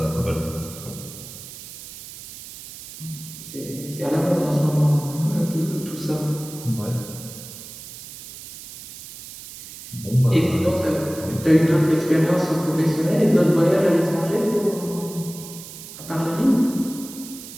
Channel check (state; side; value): noise; right; hiss, 14 dB below the sound